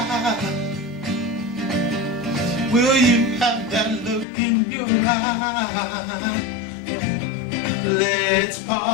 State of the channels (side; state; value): right; drops out; at 4.2 s